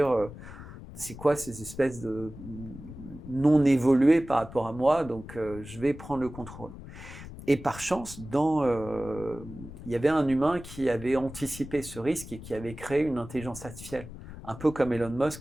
c'est quoi ces espèces de non évoluées par rapport à moi, donc je vais prendre le contrôle. Et par chance, il y avait un humain qui avait anticipé ce risque et qui avait créé une intelligence artificielle. Un peu comme Elon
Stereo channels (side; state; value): left; noise; rumble, 14 dB below the sound